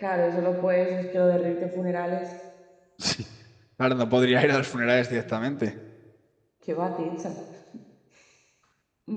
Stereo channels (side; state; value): both; identical; correlation 1.00